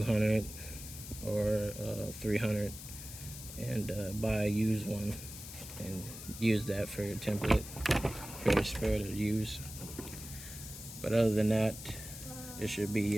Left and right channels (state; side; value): noise; left; hiss, 12 dB below the sound